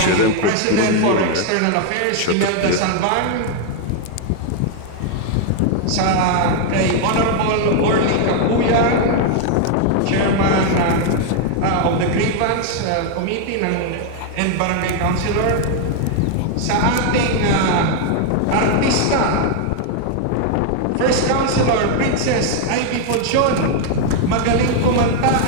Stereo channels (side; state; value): both; different; correlation 0.00